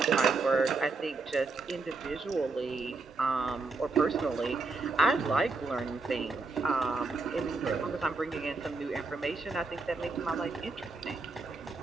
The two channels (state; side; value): quieter; left; 3.9 dB